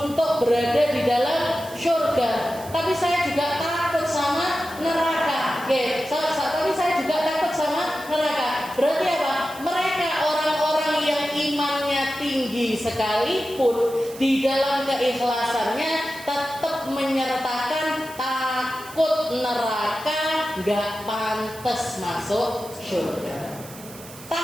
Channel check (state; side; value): noise; right; hiss, 17 dB below the sound